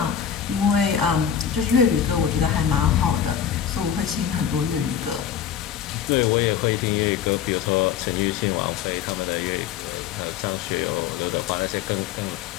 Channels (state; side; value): quieter; right; 8.6 dB